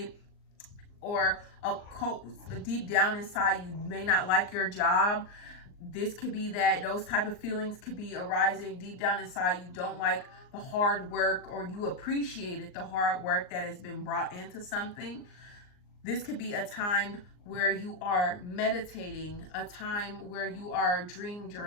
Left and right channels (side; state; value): right; late; 39 ms